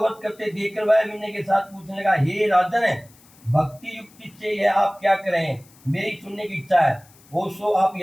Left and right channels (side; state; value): left; noise; hiss, 27 dB below the sound